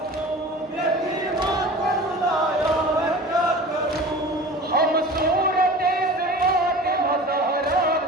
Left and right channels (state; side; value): normal; both; correlation 0.38